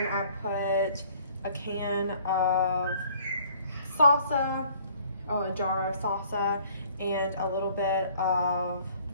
I put a can of salsa, or a jar of salsa, and a little bit of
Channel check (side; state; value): both; inverted; correlation -0.57